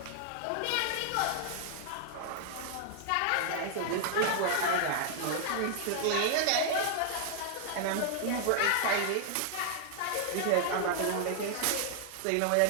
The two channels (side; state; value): both; different; correlation -0.01